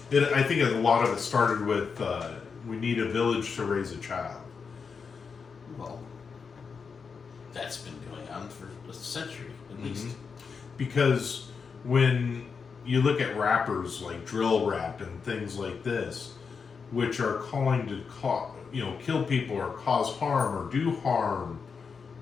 I think a lot of it started with we need a village to raise a child. Well, that's been going on for a century at least. Because when you look at rappers like drill rap and things like this, which are calling to kill people or cause harm or do harm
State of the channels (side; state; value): right; quieter; 5.6 dB